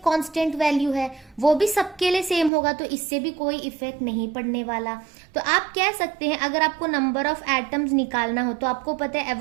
कांस्टेंट वैल्यू है, वो भी सबके लिए सेम होगा, तो इससे भी कोई इफेक्ट नहीं पड़ने वाला। तो आप कह सकते हैं अगर आपको नंबर ऑफ एटम्स निकालना हो तो आपको पता है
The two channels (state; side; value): drops out; left; at 2.5 s